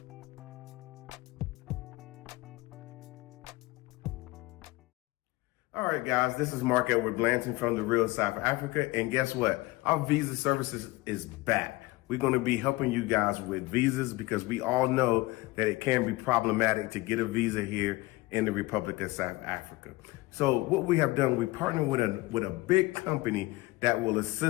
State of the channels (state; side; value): quieter; right; 20.7 dB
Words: All right, guys, this is Mark Edward Blanton from The Real South Africa, and guess what? Our visa services is back. We're going to be helping you guys with visas because we all know that it can be problematic to get a visa here in the Republic of South Africa. So what we have done, we partnered with a big company that will